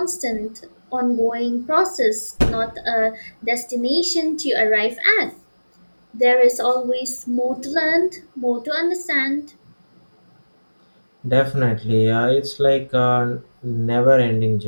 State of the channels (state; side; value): inverted; both; correlation -1.00